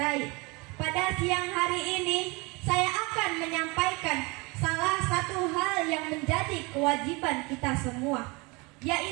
pada siang hari ini saya akan menyampaikan salah satu hal yang menjadi kewajiban kita semua,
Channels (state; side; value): quieter; left; 26.9 dB